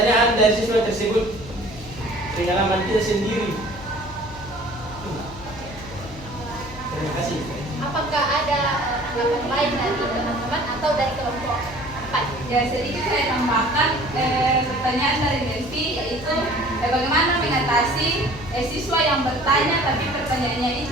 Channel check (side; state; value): left; noise; hum, 16 dB below the sound